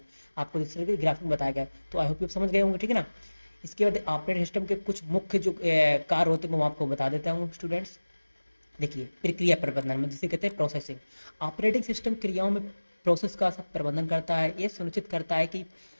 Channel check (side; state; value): both; inverted; correlation -1.00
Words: आपको इस तरह के ग्राफिक में बताया गया, तो आई होप आप समझ गए होंगे, ठीक है ना। इसके बाद ऑपरेटिंग सिस्टम के कुछ मुख्य जो कार्य होते हैं वो आपको बता देता हूँ स्टूडेंट्स। देखिए, प्रक्रिया प्रबंधन में जिसे कहते हैं प्रोसेसिंग। ऑपरेटिंग सिस्टम क्रियाओं में प्रोसेस का सब प्रबंधन करता है। यह सुनिश्चित करता है